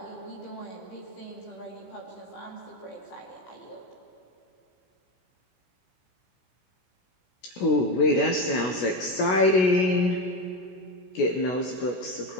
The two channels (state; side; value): late; right; 16 ms